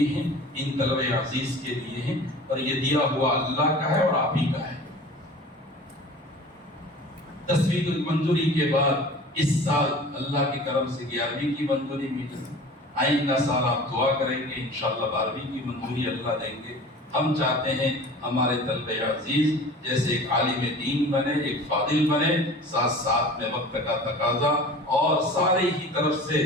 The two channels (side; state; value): both; normal; correlation 0.41